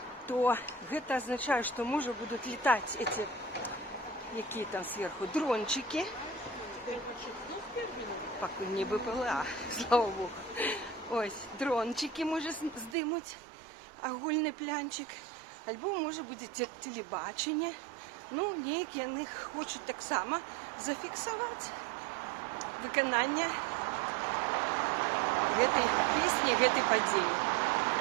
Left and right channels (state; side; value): drops out; left; at 13.0 s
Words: то гэта означает, что можа будут летать эти, якія там сверху, дрончики. Пакуль не БПЛА, слава Богу. Ось, дрончики може здимуть, агульний плянчик. Альбо може буде телебачення. Неякі яны хочуть так само зафіксувати виконання гэтай песні, гэтай падзеі.